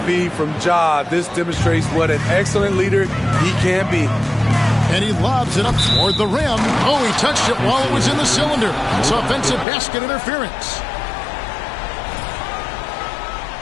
feed from Ja. This demonstrates what an excellent leader he can be. And he lobs it up toward the rim. Oh, he touched it while it was in the cylinder. It's offensive basket interference.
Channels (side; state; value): right; drops out; at 9.7 s